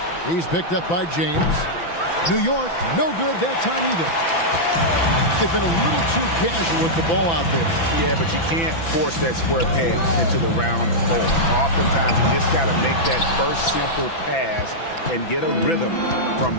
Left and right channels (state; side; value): late; right; 6.0 ms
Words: He's picked up by James. New York, no good that time either. They've been a little too casual with the ball out there. Yeah, but you can't force that square peg into the round hole. Oftentimes, you just got to make that first simple pass and get a rhythm